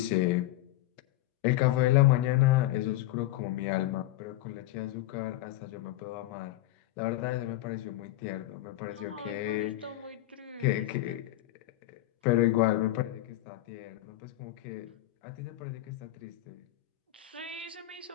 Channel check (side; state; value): right; quieter; 15.8 dB